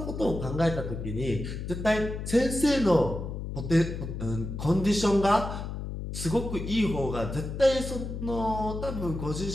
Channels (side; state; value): left; noise; hum, 6 dB below the sound